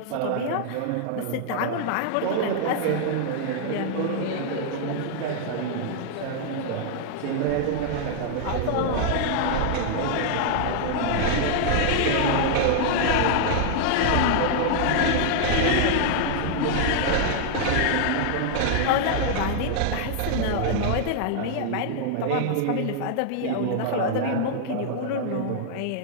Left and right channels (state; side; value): different; both; correlation -0.01